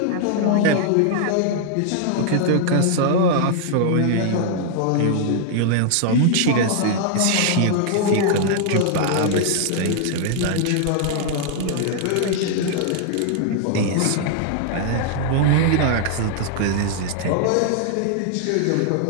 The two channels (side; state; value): both; different; correlation -0.01